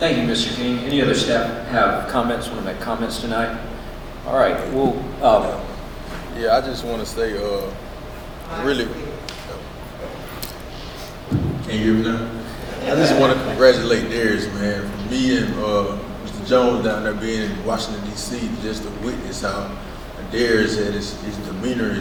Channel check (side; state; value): both; identical; correlation 1.00